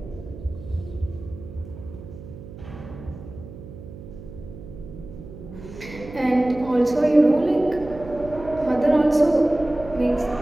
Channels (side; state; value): right; noise; hum, 14 dB below the sound